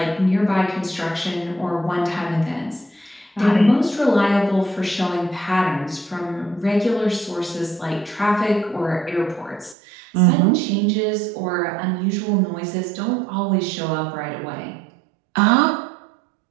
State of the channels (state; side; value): drops out; left; at 9.8 s